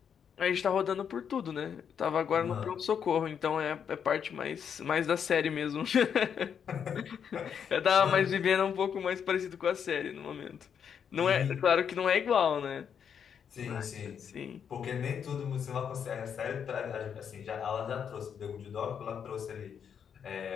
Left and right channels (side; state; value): right; quieter; 7.7 dB